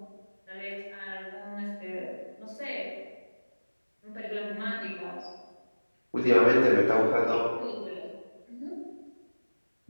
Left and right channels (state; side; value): inverted; both; correlation -1.00